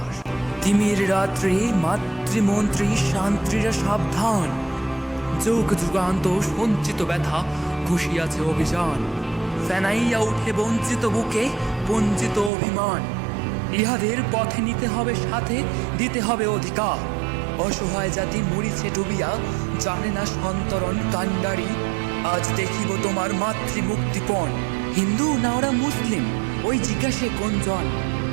তিমির রাত্রি মাতৃমন্ত্রী শান্ত্রীরা সাবধান, যুগ যুগান্ত সঞ্চিত ব্যথা ঘুষিয়াছে অভিযান। ফেনাইয়া উঠে বঞ্চিত বুকে বঞ্চিত অভিমান, ইহাদের পথে নিতে হবে সাথে, দিতে হবে অধিকার। অসহায় জাতি মরিছে ডুবিয়া, জানে না সন্তরণ কান্ডারি। আজ দেখিব তোমার মাতৃমুক্তিপণ, হিন্দু না ওরা মুসলিম, ওই জিজ্ঞাসে কোনজন?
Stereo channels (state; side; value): drops out; left; at 12.5 s